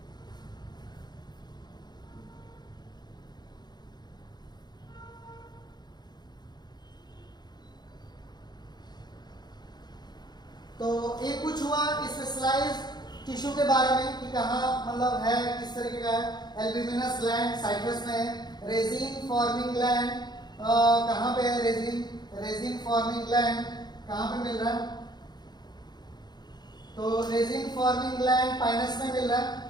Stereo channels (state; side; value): late; right; 0.20 ms